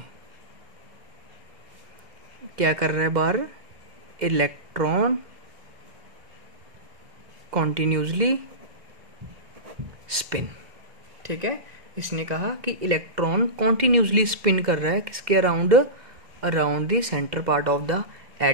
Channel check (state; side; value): late; left; 2.1 ms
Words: क्या कर रहा है, बाहर इलेक्ट्रॉन कॉन्टिन्यूसली स्पिन। ठीक है, इसने कहा कि इलेक्ट्रॉन कॉन्टिन्यूसली स्पिन कर रहा है किसके around, around the centre part of the